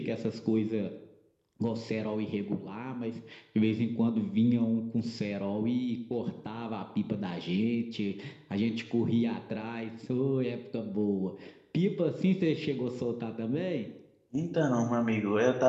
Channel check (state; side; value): identical; both; correlation 1.00